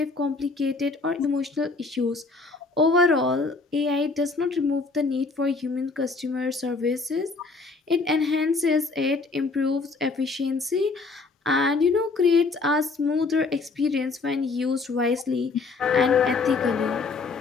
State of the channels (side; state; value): right; quieter; 4.0 dB